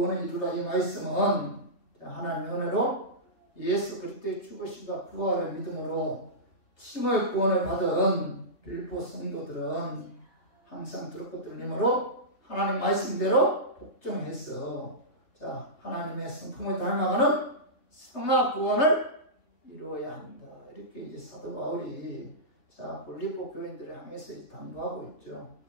이루라. 이 말씀은 하나님의 은혜로 예수 그리스도의 죽으심과 부활을 믿음으로 칭의 구원을 받은 빌립보 성도들은 항상 두렵고 떨림으로 하나님 말씀대로 복종해서 자, 하나님의 성품을 닮아가는 성화 구원을 이루어야 한다. 이렇게 이제 사도 바울이 자, 빌립보 교인들을 향해서 당부하고 있죠.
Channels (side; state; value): right; late; 3.3 ms